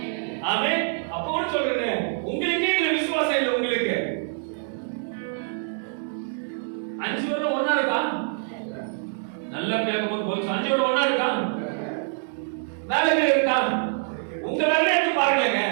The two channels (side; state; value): left; silent; digital silence